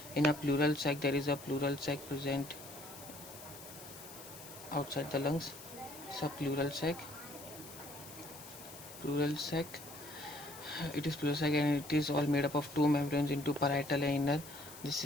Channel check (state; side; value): noise; left; hiss, 15 dB below the sound